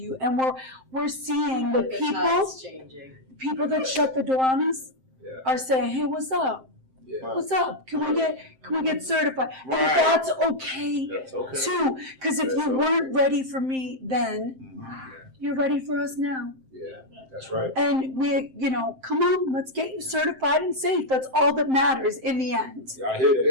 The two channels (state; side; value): late; left; 7.7 ms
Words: And we're seeing the time's changing. people that shut the door on us are saying, "Hey, what's up? Yeah. What's up? Can we get certified?" And Right. that's okay. That's okay. Too, because if you weren't ready for me then, you're ready for us now. Yeah, that's right. And come on, let's get you certified and safe. That's all that matters in the end. I hear